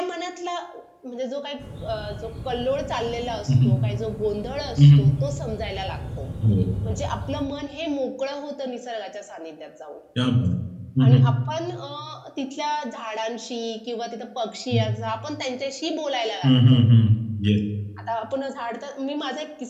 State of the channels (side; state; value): both; identical; correlation 1.00